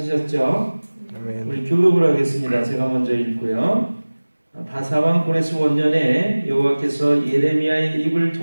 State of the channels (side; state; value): both; inverted; correlation -1.00